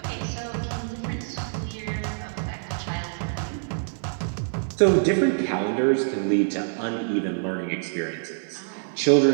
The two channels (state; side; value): silent; left; 55 dB below the other